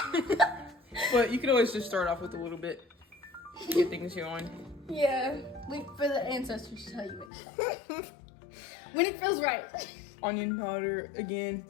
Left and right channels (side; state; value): right; drops out; at 7.3 s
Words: But you can always just start off with a little bit to get things going. Yeah, wait for the ancestors to tell you when to stop. When it feels right. Onion powder, again,